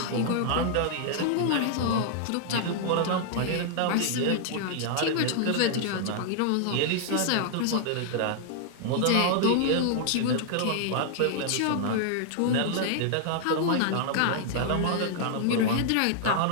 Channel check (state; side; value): different; both; correlation -0.01